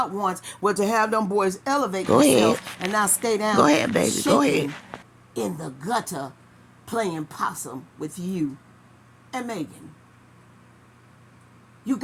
wants, was to have them boys elevate themselves and not stay down. Go ahead, baby. Go ahead. In the gutter playing possum with you and Megan. You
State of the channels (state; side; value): identical; both; correlation 1.00